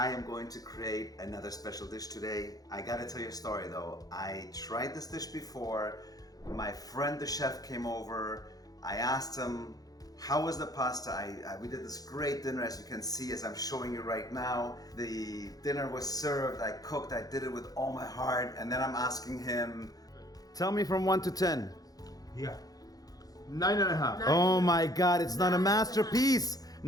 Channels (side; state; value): right; late; 0.18 ms